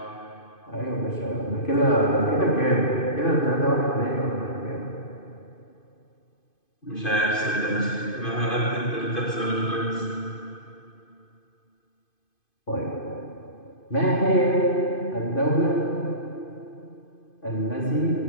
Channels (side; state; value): right; late; 2.5 ms